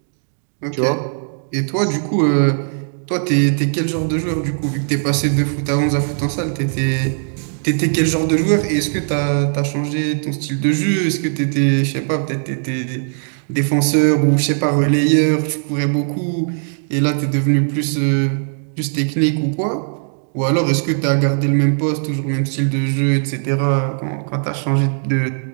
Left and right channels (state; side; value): silent; left; digital silence